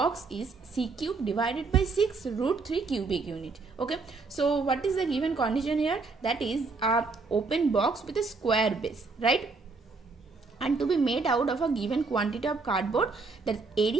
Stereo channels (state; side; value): quieter; left; 4.1 dB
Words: is c cube divided by 6 root 3 cubic unit. Okay. So, what is the given condition here? That is a open box with a square base, right? And to be made out of a given quantity of cardboard, that